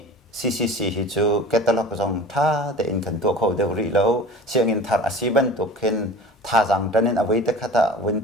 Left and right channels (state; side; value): normal; both; correlation 0.39